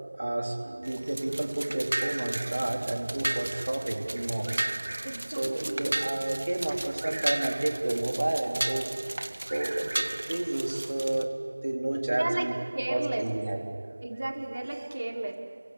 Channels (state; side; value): inverted; both; correlation -1.00